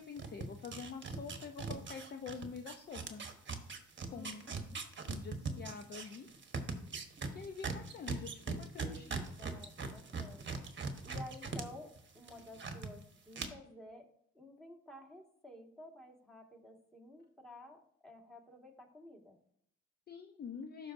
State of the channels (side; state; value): both; normal; correlation 0.46